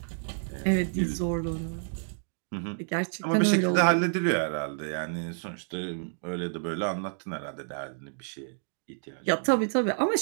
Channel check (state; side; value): silent; left; digital silence